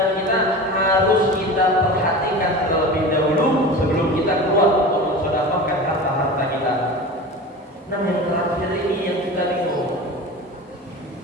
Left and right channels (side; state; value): both; normal; correlation 0.32